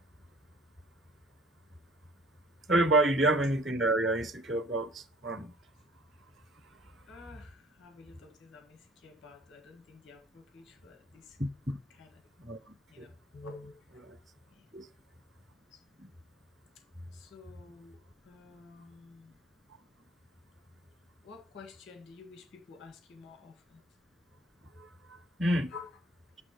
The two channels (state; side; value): normal; both; correlation 0.52